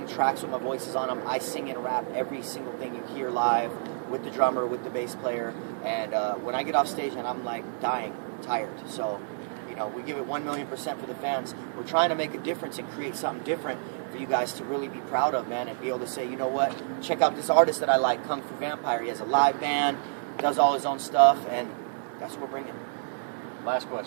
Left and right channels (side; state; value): left; silent; digital silence